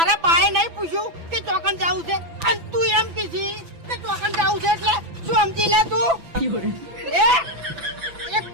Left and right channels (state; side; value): late; left; 6.0 ms